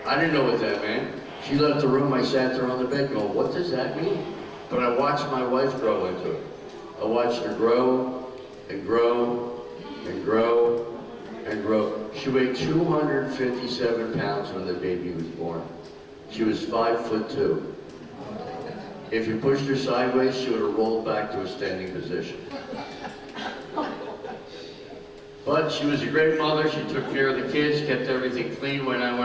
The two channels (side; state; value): both; identical; correlation 1.00